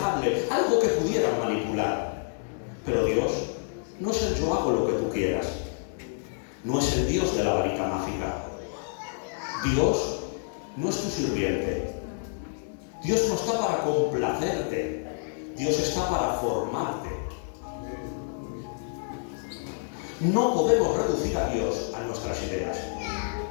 algo que pudieran manipular. Pero Dios no es el yo hago lo que tú quieras. No es el Dios de la varita mágica. Dios no es tu sirviente. Dios no está para complacerte. Dios está para formarte. No podemos reducir a Dios a nuestras ideas.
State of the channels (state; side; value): silent; right; digital silence